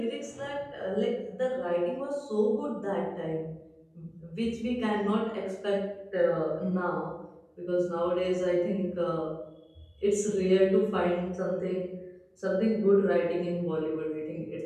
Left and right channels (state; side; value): identical; both; correlation 1.00